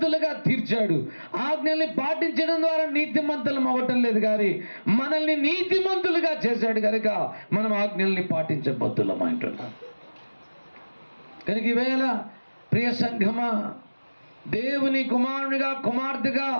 తీర్చాడు. ఆజ్ఞల్ని పాటించడం ద్వారా నీతిమంతులం అవ్వటం లేదు కానీ మనల్ని నీతిమంతులుగా చేశాడు. కనుక మనం ఆజ్ఞల్ని పాటించబద్దులం అంటున్నాం. కనుక ఈవేళ ప్రియ సంఘమా, దేవుని కుమారునిగా కుమార్తెగా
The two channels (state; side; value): inverted; both; correlation -1.00